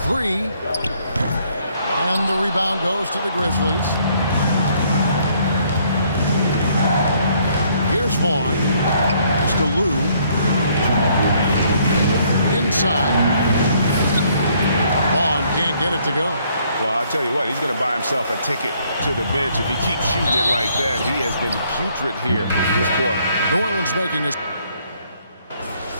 three. And the rebound goes to the Grizzlies. Here's Vaughn. Pass to Lou. Inside. Vaughn can't get it to go. Well, I'll tell you what, he's going to buy himself a ticket to the bench. If he keeps shooting it like that, he has been putrid here this quarter. New Orleans making a...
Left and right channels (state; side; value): inverted; both; correlation -0.66